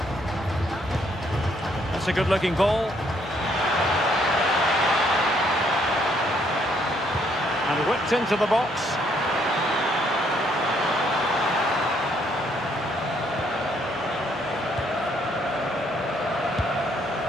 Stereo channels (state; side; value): normal; both; correlation 0.69